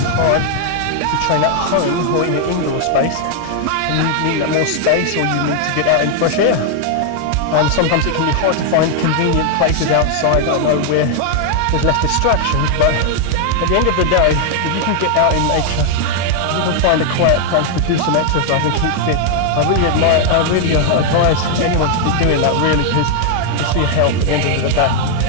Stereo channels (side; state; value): both; different; correlation 0.00